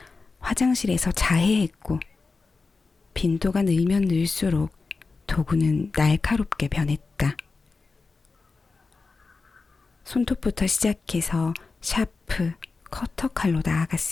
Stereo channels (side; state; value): right; quieter; 4.2 dB